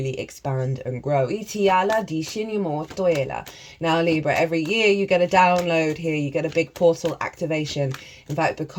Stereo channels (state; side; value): identical; both; correlation 1.00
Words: expand and grow. Now, Libra, every year you get a download here. You get a big portal activation. In fact,